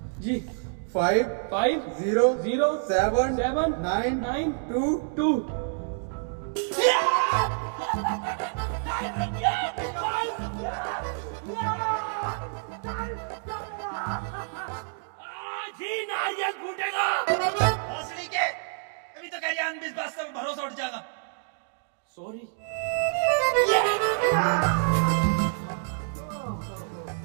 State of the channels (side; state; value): left; silent; digital silence